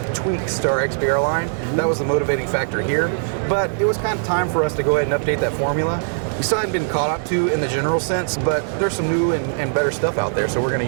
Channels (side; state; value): left; silent; digital silence